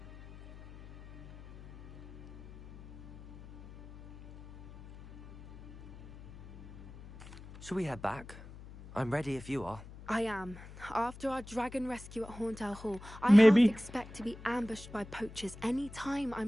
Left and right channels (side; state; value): left; noise; hum, 17 dB below the sound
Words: Shall we head back? I'm ready if you are. I am. After our dragon rescue at Hauntel Hall, I Maybe. half expect to be ambushed by poachers any time